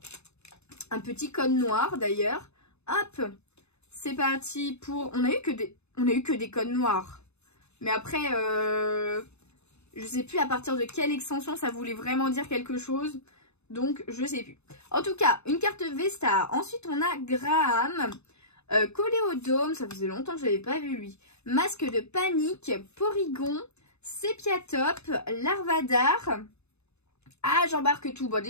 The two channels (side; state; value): right; late; 0.80 ms